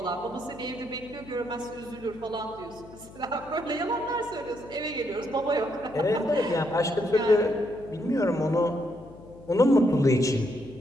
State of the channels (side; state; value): left; noise; hum, 20 dB below the sound